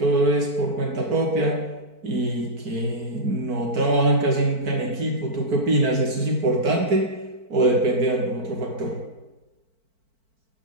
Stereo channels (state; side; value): late; left; 4.5 ms